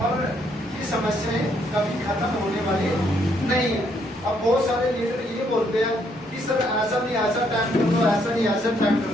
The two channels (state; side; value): noise; right; rumble, 28 dB below the sound